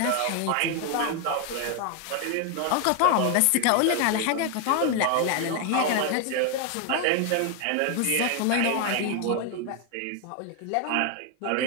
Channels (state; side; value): different; both; correlation 0.01